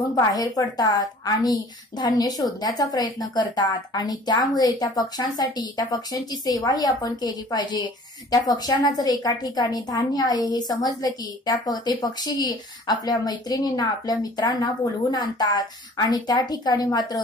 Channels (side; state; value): both; normal; correlation 0.49